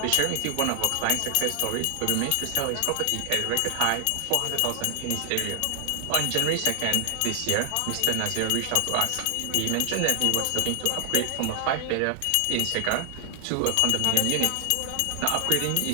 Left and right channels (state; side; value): different; both; correlation 0.00